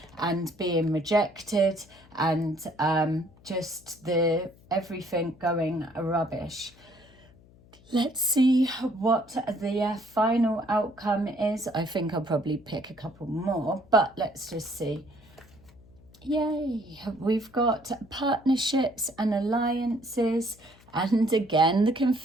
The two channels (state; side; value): noise; left; hum, 26 dB below the sound